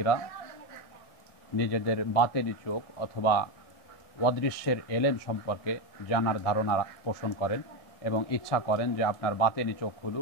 নিজেদের বাতেরি চোখ অথবা অদৃশ্যের এলেম সম্পর্কে জানার ধারণা পোষণ করেন এবং ইচ্ছা করেন যে আপনার বাতেনি চোখ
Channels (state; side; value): late; right; 1.7 ms